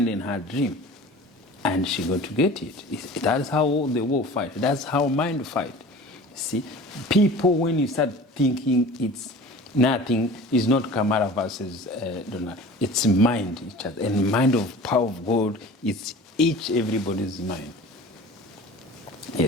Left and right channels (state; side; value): normal; both; correlation 0.41